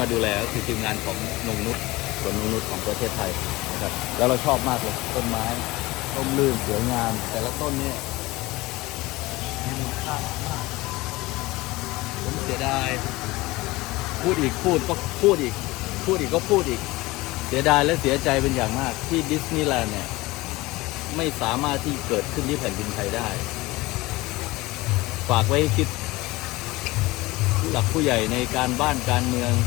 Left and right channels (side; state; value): right; quieter; 20.6 dB